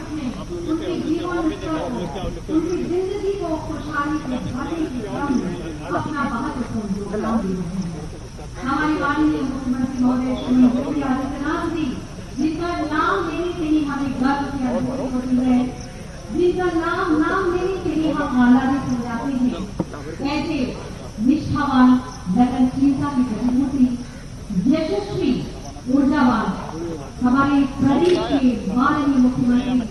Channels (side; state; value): both; identical; correlation 1.00